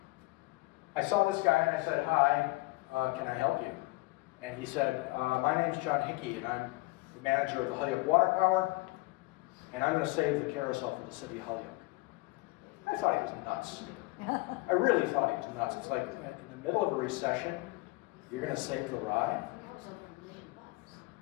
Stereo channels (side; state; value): right; quieter; 22.6 dB